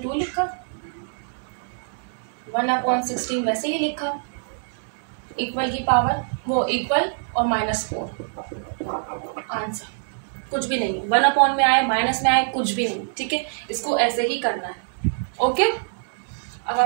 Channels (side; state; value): left; silent; digital silence